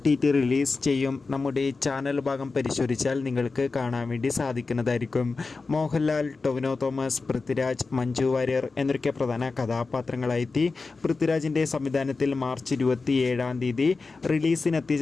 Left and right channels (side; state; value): right; quieter; 4.1 dB